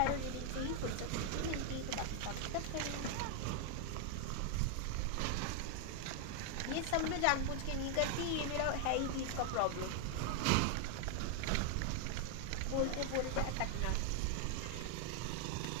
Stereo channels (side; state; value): both; different; correlation 0.00